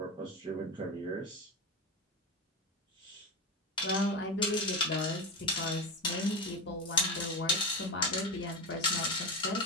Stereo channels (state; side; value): normal; both; correlation 0.19